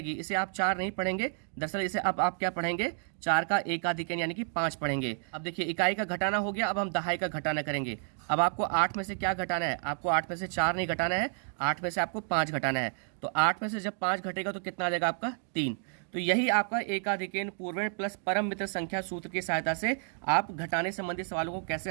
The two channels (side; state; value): left; silent; 57 dB below the other